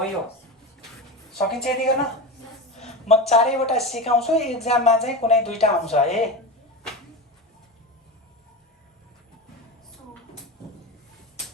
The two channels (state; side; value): normal; both; correlation 0.23